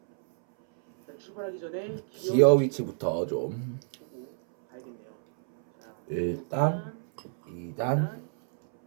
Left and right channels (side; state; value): left; silent; 59 dB below the other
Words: 자, 출발하기 전에 기어 위치부터 좀 보고 가야겠네요. 자, 1단, 2단,